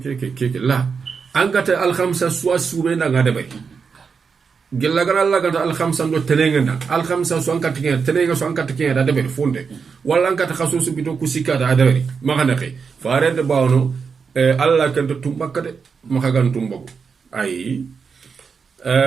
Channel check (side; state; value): left; quieter; 5.7 dB